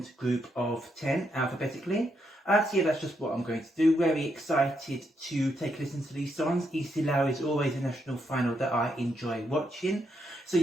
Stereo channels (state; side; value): normal; both; correlation 0.79